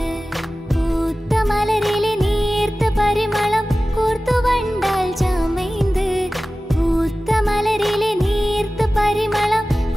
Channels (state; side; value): normal; both; correlation 0.96